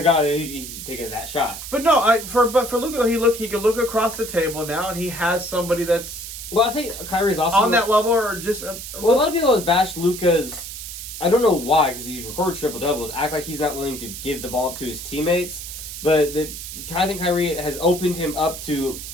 guy, he taking that shot. But no, for Luka, he can look across the table now, and he has somebody that's... Well, I think Kyrie's also... on that level, or just... a lot of people have bashed Luka's... I don't know why, because he records triple-doubles, act like he's not willing to give the ball up to his teammates. But I think Kyrie has opened him up to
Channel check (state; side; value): noise; right; hiss, 10 dB below the sound